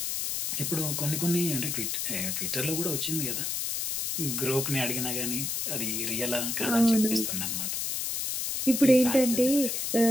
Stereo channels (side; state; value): left; noise; hiss, 1 dB below the sound